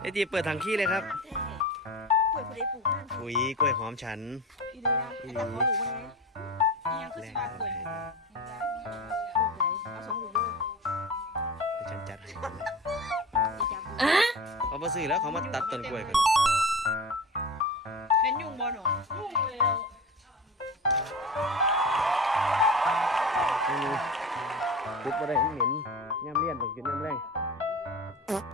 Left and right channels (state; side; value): normal; both; correlation 0.31